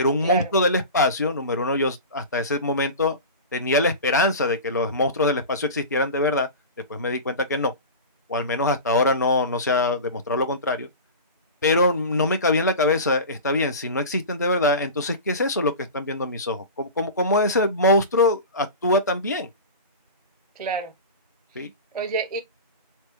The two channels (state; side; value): inverted; both; correlation -0.30